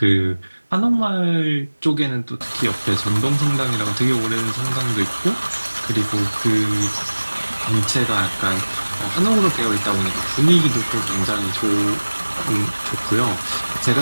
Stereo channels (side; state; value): both; inverted; correlation -1.00